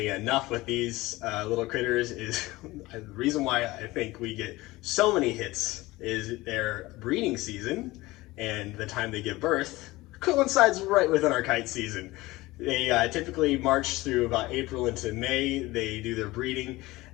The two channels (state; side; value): quieter; right; 19.7 dB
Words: enough, with these little critters, is the reason why I think we get so many hits is their breeding season and the time they give birth coincides right within our kite season. They typically march through about April into May. They do their breeding,